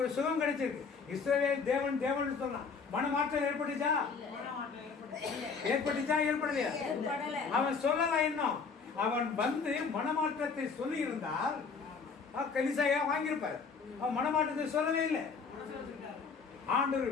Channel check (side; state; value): right; quieter; 5.3 dB